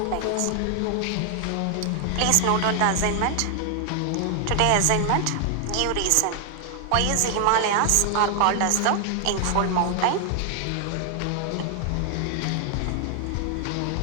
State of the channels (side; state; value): both; different; correlation 0.00